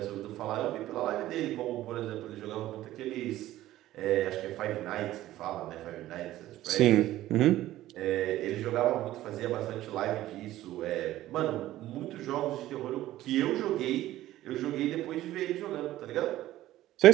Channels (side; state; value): left; quieter; 14.8 dB